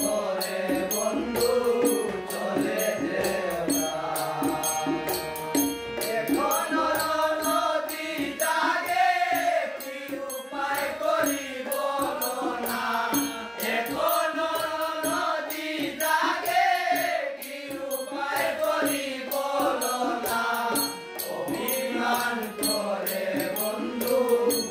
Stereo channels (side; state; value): both; identical; correlation 1.00